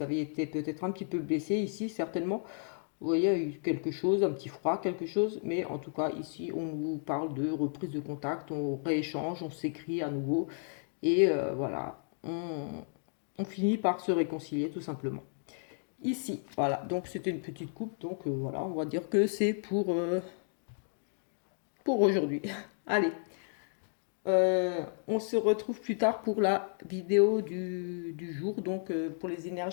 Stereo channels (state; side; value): silent; right; digital silence